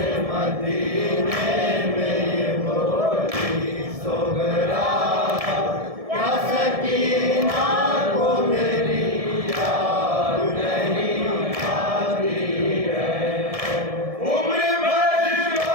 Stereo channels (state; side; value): late; left; 1.7 ms